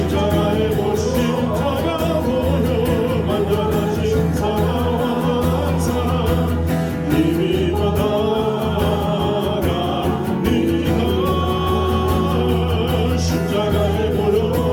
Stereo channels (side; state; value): both; identical; correlation 1.00